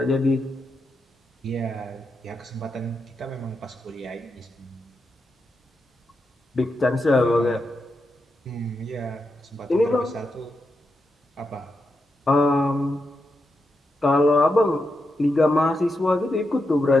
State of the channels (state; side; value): normal; both; correlation 0.86